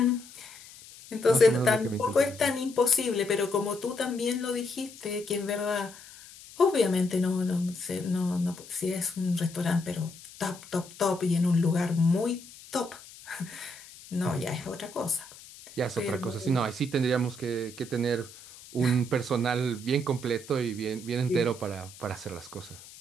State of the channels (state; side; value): noise; left; hiss, 19 dB below the sound